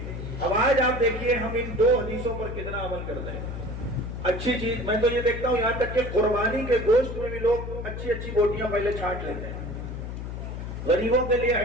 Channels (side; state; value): left; noise; hum, 7 dB below the sound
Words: اب آج آپ دیکھیے ہم ان دو حدیثوں پر کتنا عمل کرتے ہیں۔ اچھی چیز میں تو یہ دیکھتا ہوں، یہاں تک کہ قربانی کے گوشت میں بھی لوگ اچھی اچھی بوٹیاں پہلے چھانٹ لیتے ہیں، غریبوں کے لیے